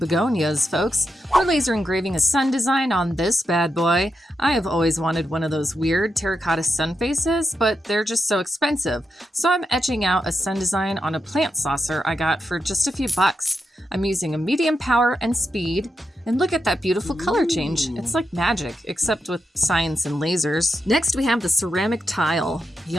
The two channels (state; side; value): normal; both; correlation 0.86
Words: folks. We're laser engraving a sun design on this bad boy. I have always wanted one of those weird terracotta sun faces, but they're just so expensive. So I'm etching out a sun design on a plant saucer I got for just a few bucks. I'm using a medium power and speed. And look at that beautiful color change. It's like magic, except with science and lasers. Next, we have the ceramic tile.